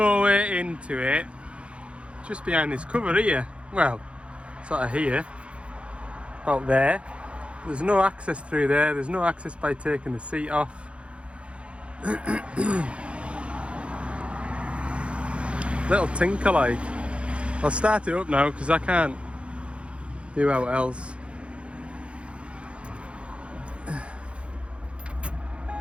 way into it just behind this cover here. Well, sort of here, about there. There's no access through there. There's no access by taking the seat off. Little tinker like. I'll start it up now because I can't do out else.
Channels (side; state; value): left; late; 0.060 ms